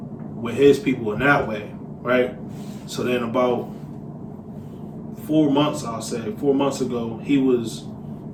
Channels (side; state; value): both; identical; correlation 1.00